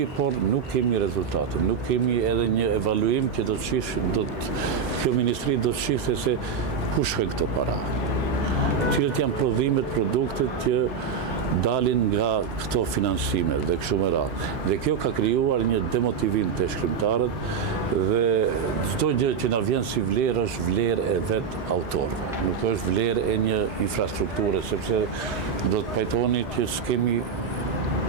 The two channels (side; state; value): left; quieter; 6.2 dB